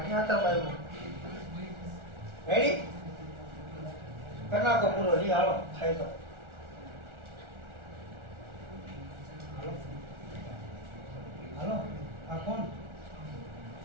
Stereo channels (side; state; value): left; late; 1.4 ms